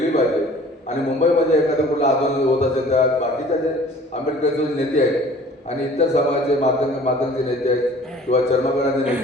पाहिजे. आणि मुंबईमध्ये एखादं कुठलं आंदोलन होत असेल तर बाकीच्या जे आंबेडकरचे नेते आहेत आणि इतर समाजाचे मातंगचे नेते आहेत किंवा चर्मकारांचे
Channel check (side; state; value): both; normal; correlation 0.50